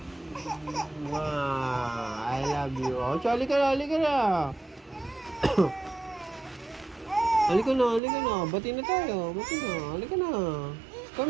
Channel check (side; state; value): left; drops out; at 8.0 s